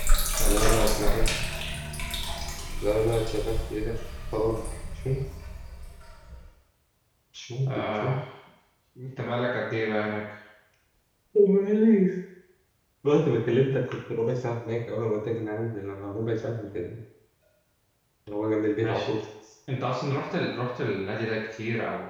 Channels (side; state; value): both; identical; correlation 1.00